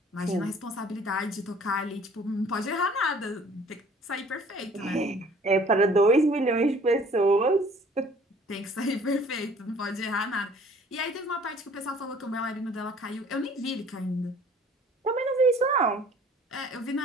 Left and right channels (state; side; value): normal; both; correlation 0.54